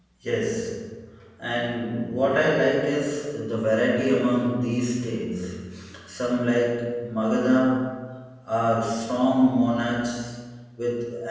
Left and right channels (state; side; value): identical; both; correlation 1.00